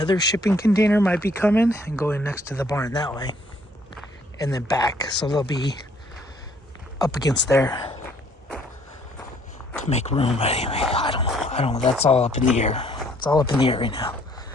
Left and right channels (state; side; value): normal; both; correlation 0.63